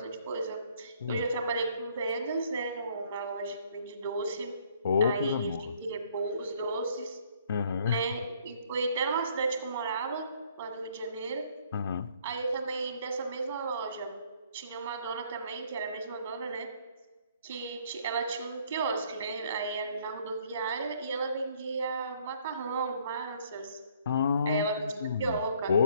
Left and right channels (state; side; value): inverted; both; correlation -0.62